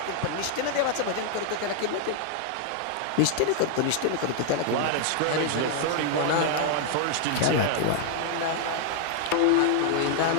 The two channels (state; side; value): different; both; correlation 0.00